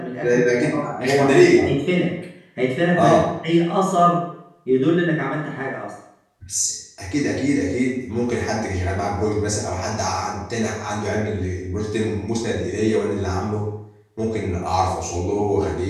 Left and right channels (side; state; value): both; identical; correlation 1.00